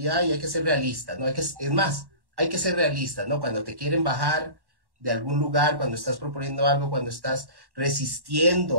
y hay que ser realistas, ¿no? Es más, hay que ser realistas, ¿no? Cuando te quieren bajar de algún lugar, cuando estás proponiendo algo, cuando estás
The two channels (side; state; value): left; late; 1.1 ms